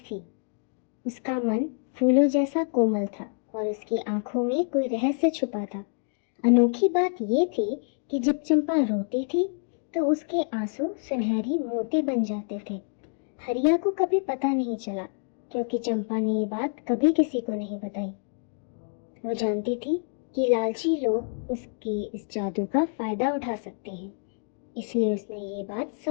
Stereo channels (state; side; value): silent; right; 60 dB below the other